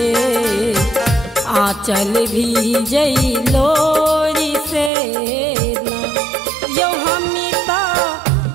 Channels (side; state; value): left; drops out; at 4.9 s